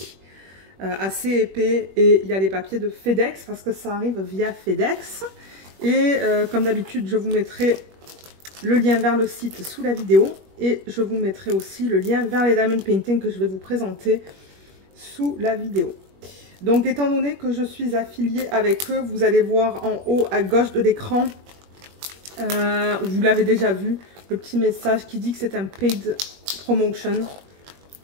assez épais, et il y a les papiers de FedEx parce que ça arrive via FedEx. Et comme d'habitude, je vous mettrai le lien vers le site sous la vidéo et je vous mettrai aussi le lien vers les diamond painting que je vais vous présenter sous la vidéo. Donc étant donné que je suis affiliée avec eux, vous allez voir en haut à gauche de l'écran, vous l'avez déjà vu, le petit message qui dit que c'est un paid promotion,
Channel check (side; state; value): left; late; 21 ms